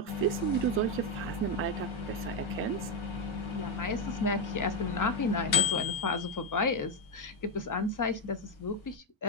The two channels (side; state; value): both; normal; correlation 0.06